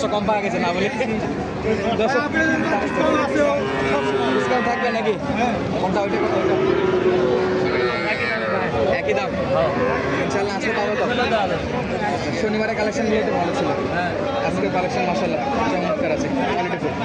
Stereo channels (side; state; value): both; identical; correlation 1.00